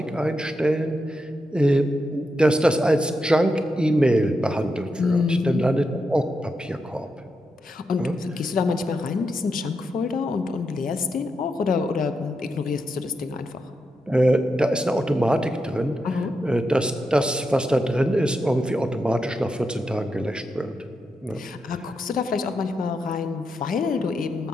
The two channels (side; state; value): both; normal; correlation 0.85